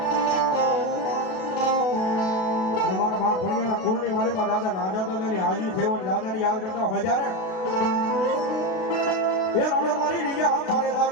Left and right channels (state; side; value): late; right; 32 ms